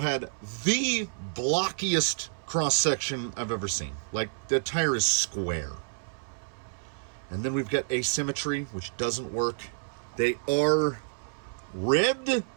the blockiest cross-section I've ever seen. The tire is square. And then we've got asymmetry, which doesn't work. They are ribbed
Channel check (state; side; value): silent; left; 59 dB below the other